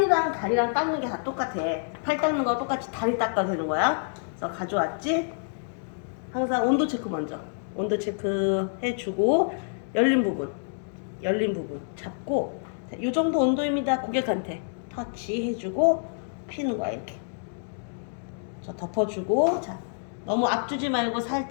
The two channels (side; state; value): right; silent; digital silence